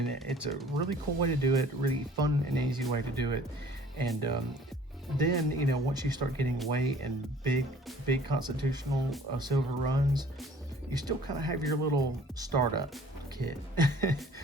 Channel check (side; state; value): both; normal; correlation 0.52